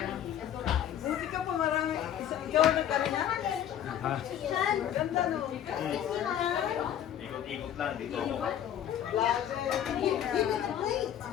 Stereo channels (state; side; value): quieter; right; 10.4 dB